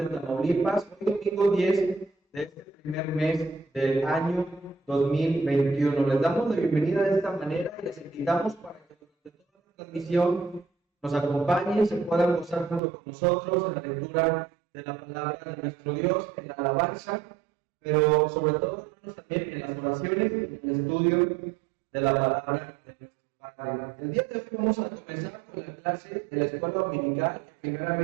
Tamaulipas, hoy domingo 10 de este primer mes del año 2021. Les damos la bienvenida de esta manera y les invitamos para que durante toda la transmisión nos acompañen, se puedan gozar junto con nosotros en la lectura de la palabra de nuestro Dios, en la alabanza, pero sobre todo, hermanos, también en las oraciones y en el estudio de la palabra de nuestro Padre. El día de hoy vamos a comenzar con la clase de la escuela dominical.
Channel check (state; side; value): drops out; left; at 12.8 s